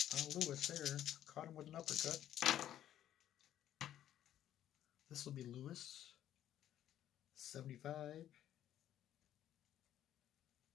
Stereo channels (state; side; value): quieter; right; 11.6 dB